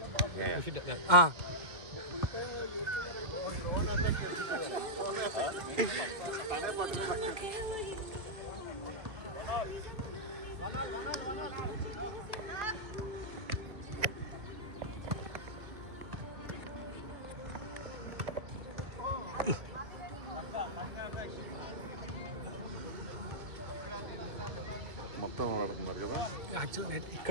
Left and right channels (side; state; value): left; late; 2.0 ms